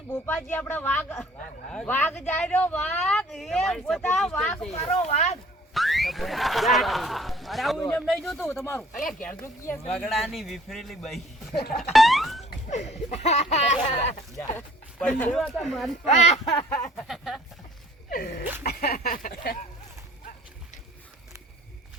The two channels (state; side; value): normal; both; correlation 0.55